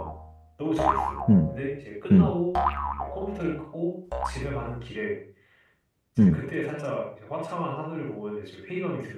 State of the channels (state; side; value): identical; both; correlation 1.00